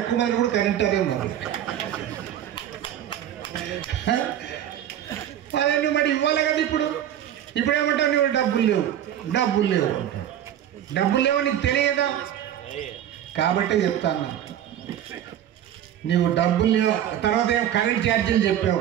మంది కూడా కనింటారే మరి. అదే నువ్వు మరి ఇవ్వాలి కదా. ఇప్పుడు ఏమంటావు, నువ్వు డబ్బులు లేవు అంటావు. డబ్బులు లేవు నీకు తెలియదా? కాబట్టే చెప్తాను, నీవు డబ్బులు లేవు. తర్వాత ఏమో కరెంట్ ఛార్జీలు చెప్పావు,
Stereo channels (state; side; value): quieter; left; 10.8 dB